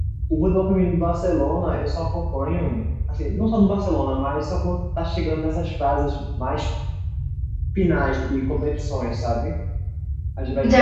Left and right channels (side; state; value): both; identical; correlation 1.00